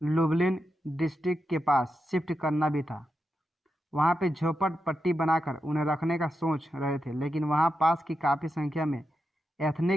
लुब्लिन डिस्ट्रिक्ट के पास शिफ्ट करना भी था। वहाँ पे झोपड़पट्टी बनाकर उन्हें रखने का सोच रहे थे, लेकिन वहाँ पास की काफ़ी संख्या में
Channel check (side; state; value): both; normal; correlation 0.87